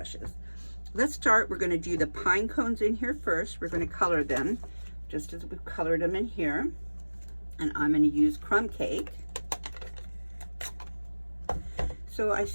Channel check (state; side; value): inverted; both; correlation -1.00